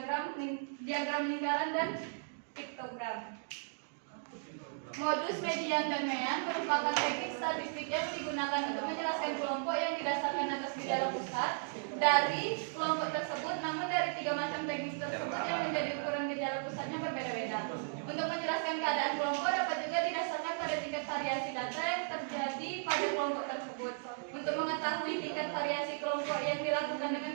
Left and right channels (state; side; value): silent; left; digital silence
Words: lingkaran, dan piktogram. Modus median dan mean merupakan teknik statistik yang digunakan untuk menjelaskan kelompok yang didasarkan atas gejala pusat dari kelompok tersebut, namun dari 3 macam teknik tersebut yang menjadi ukuran gejala pusatnya berbeda-beda. Untuk menjelaskan keadaan kelompok dapat juga didasarkan pada tingkat variasi data yang terjadi pada kelompok tersebut. Untuk mengetahui tingkat variasi kelompok yang dilakukan